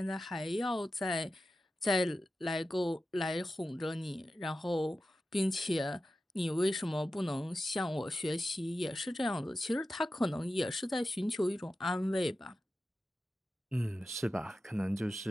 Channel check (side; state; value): both; normal; correlation 0.93